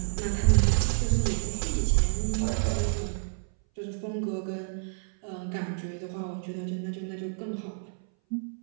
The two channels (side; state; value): left; silent; 59 dB below the other